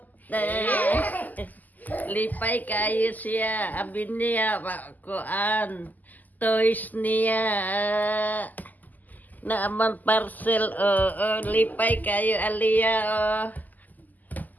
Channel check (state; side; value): late; right; 0.082 ms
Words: Lipay kayo siya abi niya kuan toys niya na amang parcel lipay kayo Aliyah